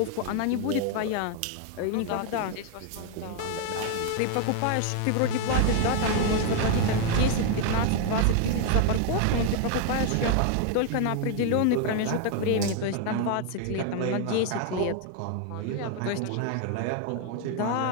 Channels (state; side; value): different; both; correlation 0.01